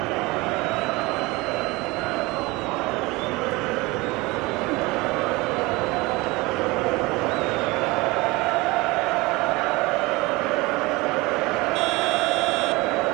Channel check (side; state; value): left; quieter; 22.9 dB